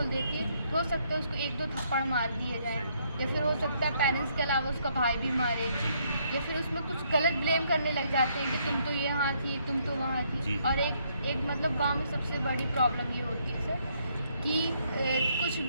देती है, हो सकता है उसको 1-2 थप्पड़ मार दिए जाए, या फिर हो सकता है पेरेंट्स के अलावा उसका भाई भी मारे, या फिर उसमें कुछ गलत ब्लेम करने लग जाते हैं कि तुम तो यहाँ थी, तुम तो वहाँ थी। जी। और एक मतलब गांव में सबसे बड़ी प्रॉब्लम ये होती है सर कि कुछ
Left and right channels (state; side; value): inverted; both; correlation -0.71